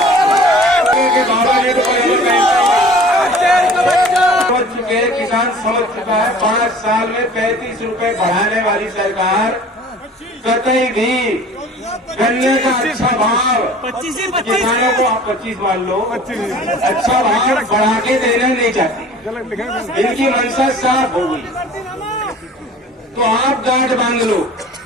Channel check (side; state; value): both; normal; correlation 0.46